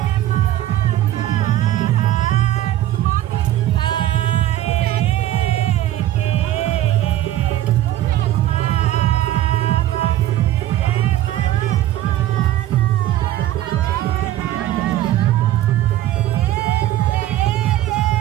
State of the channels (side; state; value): left; quieter; 13.4 dB